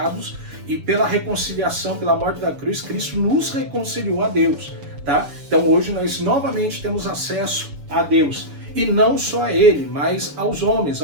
e pela reconciliação, pela morte da cruz, Cristo nos reconciliou a Deus, tá? Então hoje nós novamente temos acesso a Deus. E não só a ele, mas aos homens,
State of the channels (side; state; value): left; late; 7.0 ms